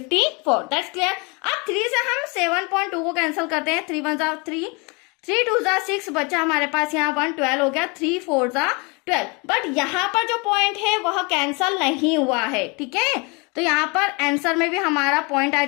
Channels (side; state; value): right; quieter; 29.9 dB